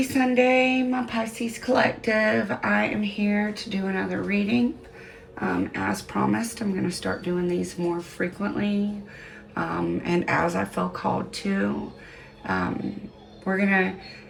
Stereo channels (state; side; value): identical; both; correlation 1.00